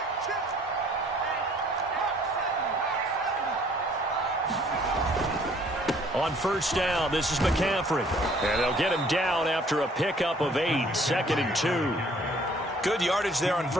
On first down, this is McCaffrey. And they'll get him down after a pickup of 8, 2nd and 2. Good yardage there on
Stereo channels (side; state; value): both; normal; correlation 0.58